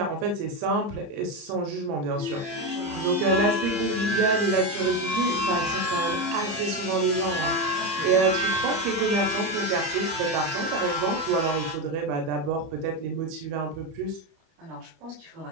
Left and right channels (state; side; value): late; left; 30 ms